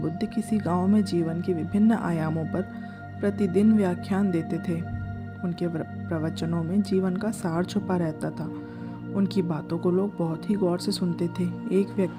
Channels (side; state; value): both; identical; correlation 1.00